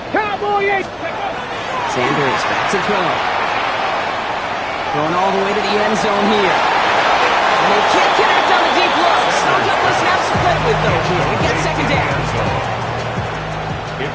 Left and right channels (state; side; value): identical; both; correlation 1.00